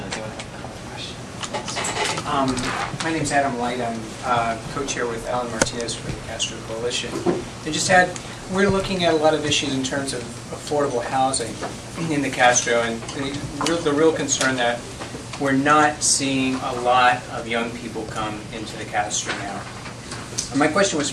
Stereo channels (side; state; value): both; identical; correlation 1.00